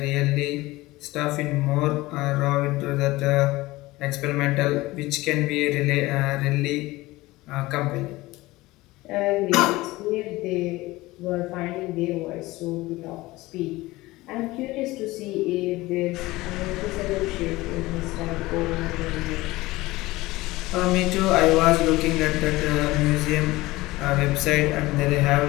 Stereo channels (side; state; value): right; quieter; 19.5 dB